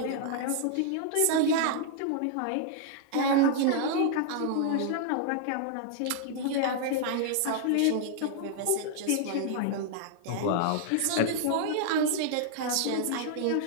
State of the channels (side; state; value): both; different; correlation -0.01